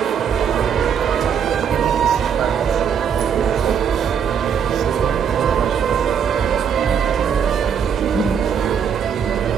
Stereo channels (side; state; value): left; quieter; 7.6 dB